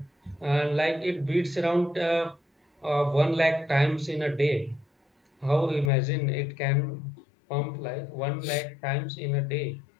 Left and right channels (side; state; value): right; drops out; at 5.9 s